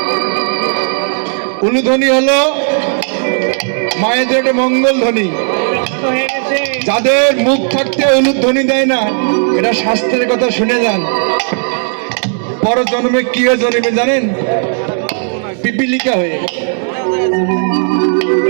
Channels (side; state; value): left; silent; digital silence